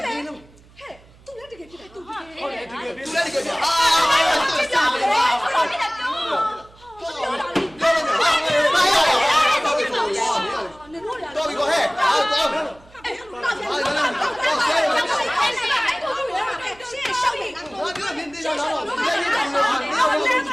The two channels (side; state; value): right; noise; hum, 26 dB below the sound